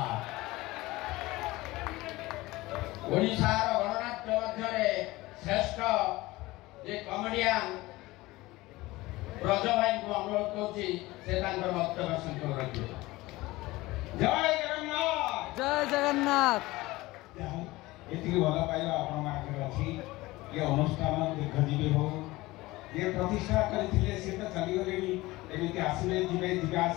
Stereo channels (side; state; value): right; quieter; 19.8 dB